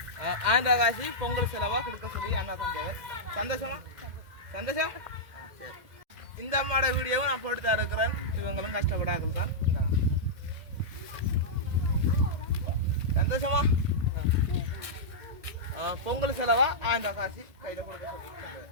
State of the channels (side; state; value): left; late; 2.0 ms